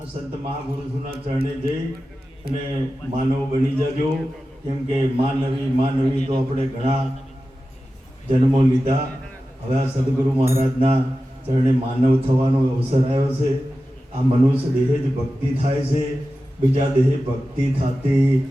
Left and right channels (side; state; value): both; normal; correlation 0.93